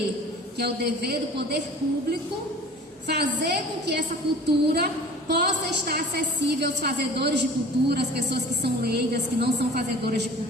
que é o dever do poder público, fazer com que essa cultura possa estar acessível aos fazedores de cultura, as pessoas que são leigas, que não são fazedoras de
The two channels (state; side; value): normal; both; correlation 0.43